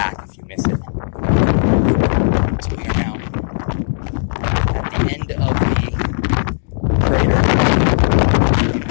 if you miss it. So we are now at the end of the crater.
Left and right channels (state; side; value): silent; right; 68 dB below the other